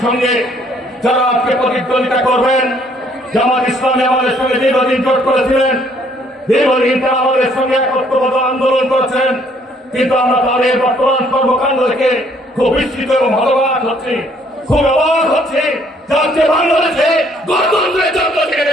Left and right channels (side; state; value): both; normal; correlation 0.64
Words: সঙ্গে যারা আজকে প্রতিদ্বন্দ্বিতা করবেন, জামাত ইসলামী আমাদের সঙ্গে দীর্ঘদিন জোট করেছিলেন, দীর্ঘদিন তারা আমাদের সঙ্গে একত্রবদ্ধ আন্দোলন করেছেন, কিন্তু আমরা তাদের বর্তমান কর্মকাণ্ড দেখে খুব বিস্মিত এবং হতবাক হচ্ছি, খুব অবাক হচ্ছি। যাতে বাংলাদেশে গণতন্ত্রের জন্য